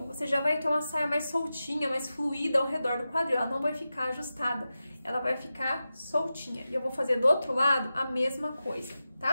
você já vai ter uma saia mais soltinha, mais fluida ao redor do quadril. Ela não vai ficar ajustada, ela vai ficar soltinha. E eu vou fazer do outro lado a mesma coisa,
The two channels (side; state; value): both; inverted; correlation -0.93